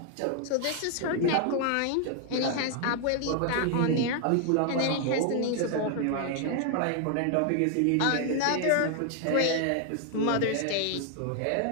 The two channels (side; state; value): both; different; correlation 0.00